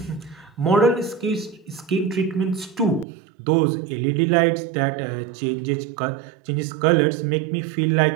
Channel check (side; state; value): left; drops out; at 3.1 s